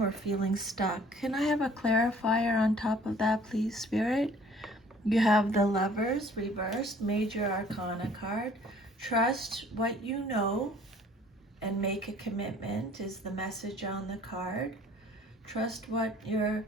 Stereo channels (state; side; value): normal; both; correlation 0.54